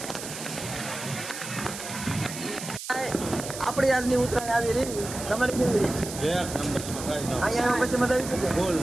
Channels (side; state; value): right; noise; hiss, 9 dB below the sound